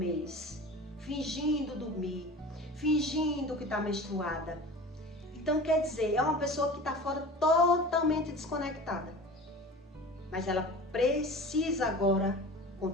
fingindo dormir, fingindo que está menstruada. Então, quer dizer, é uma pessoa que está fora totalmente desconectada. Mas ela precisa agora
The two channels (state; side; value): normal; both; correlation 0.37